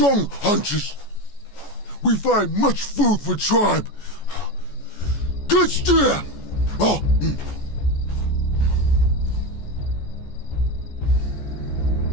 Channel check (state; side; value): late; right; 14 ms